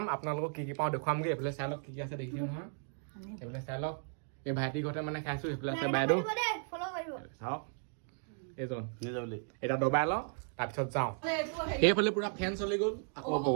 আপোনালোকক কি পাওঁ দেখুৱামগৈ। এইফালে চাই লওক কি আছে দেখিছে নহয়। এইফালে চাই লওক এই ভাইটি ঘৰতে মানে খাইছোঁ। সেইফালে আছে বাইদেউ চাওক এইজন এতিয়া দবাই লওঁ তাৰপিছত যাওঁ। এইফালে পুৰা ফেন চলি গ'ল আকৌ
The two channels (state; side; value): silent; left; 54 dB below the other